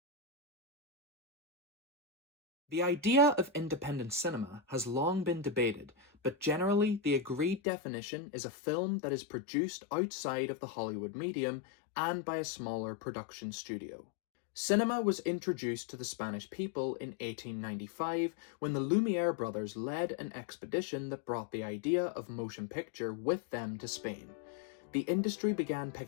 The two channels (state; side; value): drops out; right; at 7.6 s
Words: The idea of independent cinema has long been debated, but generally the agreed definition is a film that is produced outside of the Hollywood medium and by a smaller production studio. Cinema was introduced to the Spanish people in 1895 when the Lumiere brothers led an expedition that brought the idea of motion picture with them to Spain. The industry began